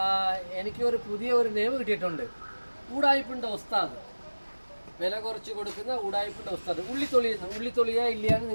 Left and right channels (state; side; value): inverted; both; correlation -1.00